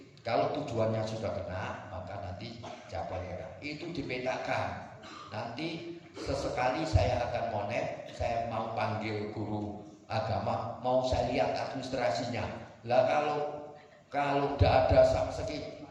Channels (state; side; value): identical; both; correlation 1.00